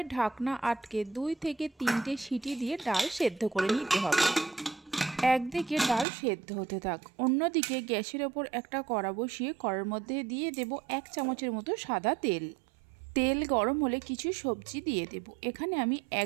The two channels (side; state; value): left; drops out; at 6.1 s